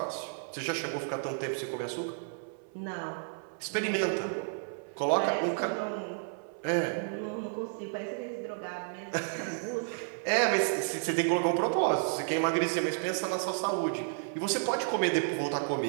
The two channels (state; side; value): silent; left; 57 dB below the other